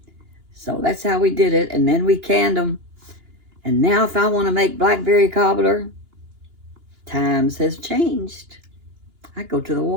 So that's how we did it. And then we canned them. And now if I want to make blackberry cobbler, times has changed. I go to the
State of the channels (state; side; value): late; left; 2.9 ms